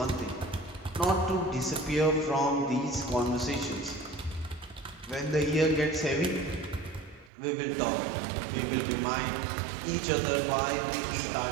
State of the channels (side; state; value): left; drops out; at 7.3 s